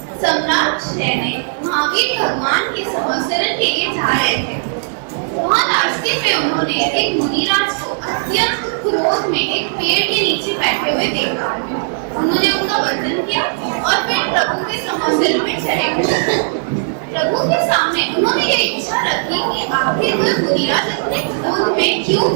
सम्राट शैने महावीर भगवान के संवत्सरण के लिए जा रहे थे। वहाँ रास्ते में उन्होंने एक मुनिराज को अत्यंत क्रोध में एक पेड़ के नीचे बैठे हुए देखा। उन्होंने उनका वंदन किया और फिर प्रभु के संवत्सरण में चले गए। प्रभु के सामने उन्होंने ये इच्छा रखी कि आखिर वह मुनिराज इतने क्रोध में क्यों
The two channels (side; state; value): left; silent; 68 dB below the other